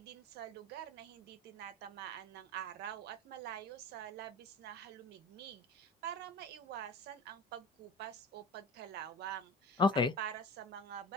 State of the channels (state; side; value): normal; both; correlation 0.35